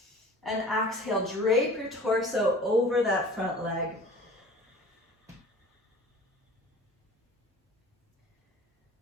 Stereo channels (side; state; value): both; normal; correlation 0.43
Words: And exhale, drape your torso over that front leg.